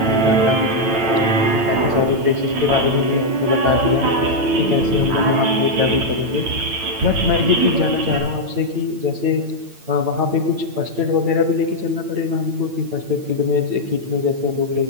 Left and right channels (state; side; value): late; left; 8.9 ms